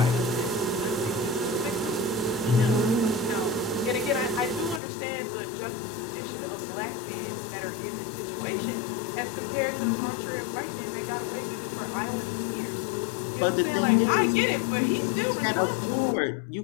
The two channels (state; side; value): drops out; right; at 4.8 s